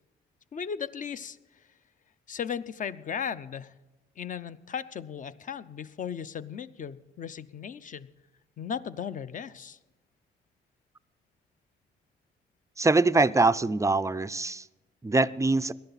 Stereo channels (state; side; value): normal; both; correlation 0.59